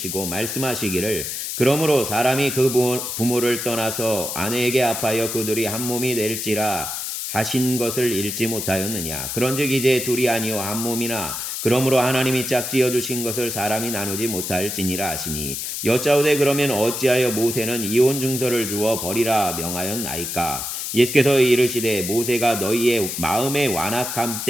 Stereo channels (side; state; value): left; noise; hiss, 4 dB below the sound